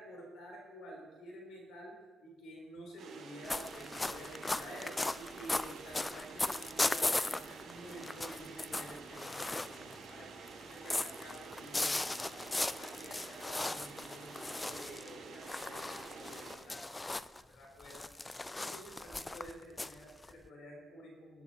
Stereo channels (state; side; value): normal; both; correlation 0.95